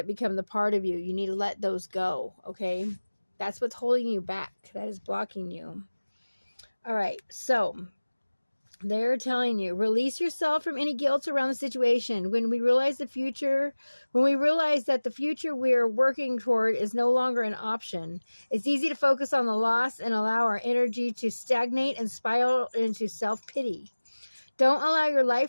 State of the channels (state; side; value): inverted; both; correlation -1.00